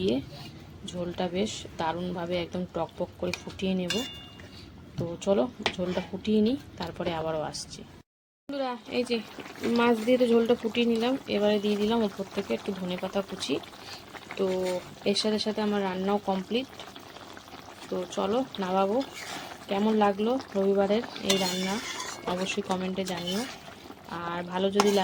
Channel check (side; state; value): both; identical; correlation 1.00